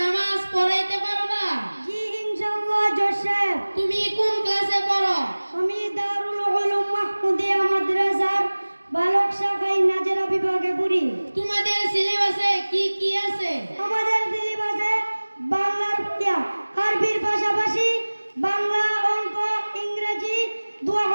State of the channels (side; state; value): both; inverted; correlation -1.00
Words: নামাজ পড়াইতে পারবা? জি ইনশাআল্লাহ জোসেফ। তুমি কোন ক্লাসে পড়ো? আমি দারুল উলুম মাহমুদিয়া মাদ্রাসার বালক শাখায় নাজেরা বিভাগে পড়ি। তোমাদের সিলেবাসে কি কি আছে? আমাদের সিলেবাসে বাংলার পড়া, আরবির পাশাপাশি বাংলা, অঙ্ক, ইংরেজি,